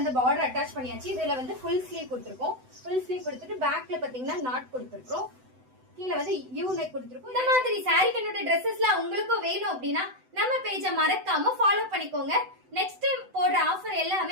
பார்டர் அட்டாச் பண்ணியாச்சு. இதுல வந்து ஃபுல் ஸ்லீவ் கொடுத்துருக்கோம். ஃபுல் ஸ்லீவ் கொடுத்துட்டு பேக்ல பாத்தீங்கன்னா நாட் கொடுத்துருக்கோம். கீழே வந்து யூ நெக் கொடுத்துருக்கோம். இந்த மாதிரி சாரி கன்வெர்ட் ட்ரெஸ்ஸஸ்லாம் உங்களுக்கும் வேணும் அப்படின்னா நம்ம பேஜை மறக்காம ஃபாலோ பண்ணிக்கோங்க. நெக்ஸ்ட் டைம் போடுற ஆஃபர்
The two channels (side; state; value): left; late; 7.9 ms